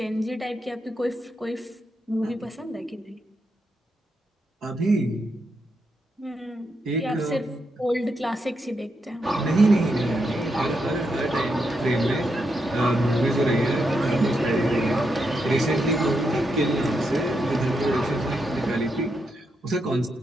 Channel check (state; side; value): normal; both; correlation 0.83